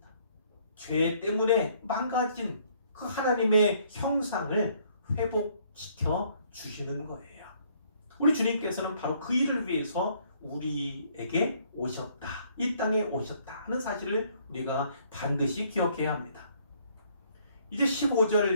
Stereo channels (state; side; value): inverted; both; correlation -0.64